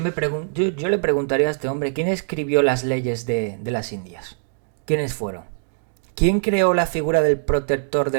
le preguntaría a este hombre, ¿quién escribió las leyes de las Indias? ¿Quiénes fueron? ¿Quién creó la figura del protector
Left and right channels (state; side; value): silent; left; digital silence